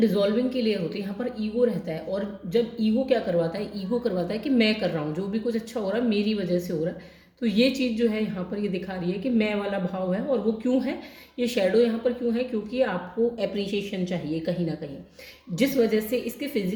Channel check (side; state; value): both; identical; correlation 1.00